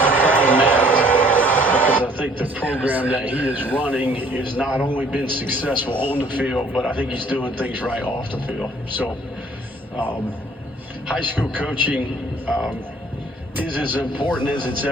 Because I think the program that he is running has not only been successful on the field, but I think he's doing things right off the field. So high school coaching is as important as it's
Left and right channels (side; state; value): both; normal; correlation 0.58